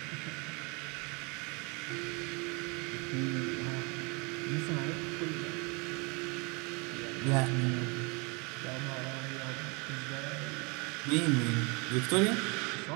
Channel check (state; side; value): quieter; left; 30.4 dB